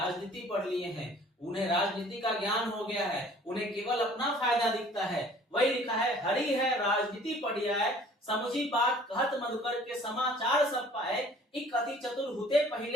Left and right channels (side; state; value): both; normal; correlation 0.52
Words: पढ़ लिए हैं, उन्हें राजनीति का ज्ञान हो गया है, उन्हें केवल अपना फायदा दिखता है। वही लिखा है हरि है राजनीति पढ़िया है, समझी बात कहत मधुकर के समाचार सब पाए, एक अति चतुर हुते